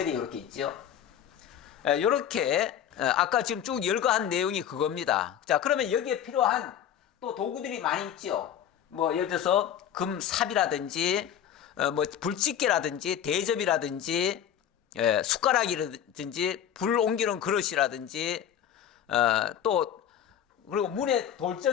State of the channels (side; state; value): right; quieter; 9.7 dB